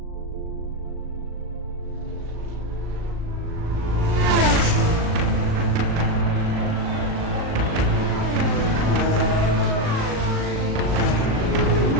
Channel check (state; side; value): late; left; 38 ms